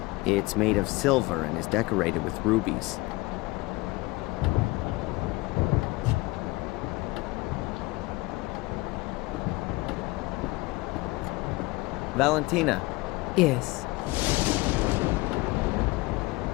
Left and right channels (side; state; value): right; quieter; 22.3 dB